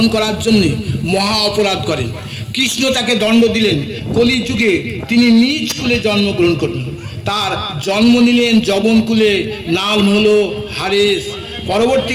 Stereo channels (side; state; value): both; identical; correlation 1.00